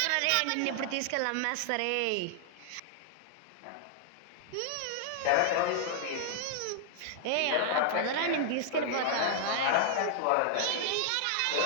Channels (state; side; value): different; both; correlation -0.01